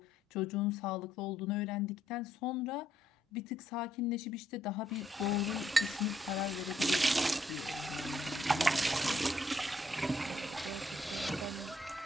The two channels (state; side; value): normal; both; correlation 0.71